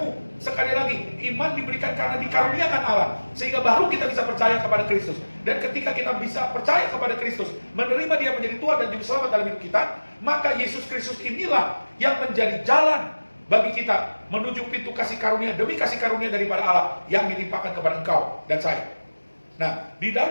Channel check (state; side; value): inverted; both; correlation -1.00